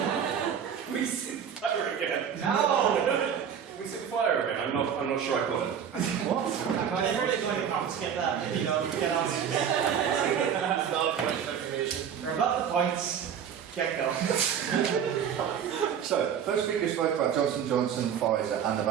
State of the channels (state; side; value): quieter; left; 8.1 dB